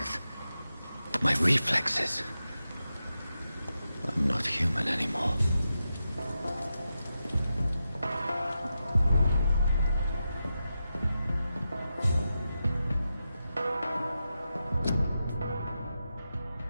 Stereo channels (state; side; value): inverted; both; correlation -0.90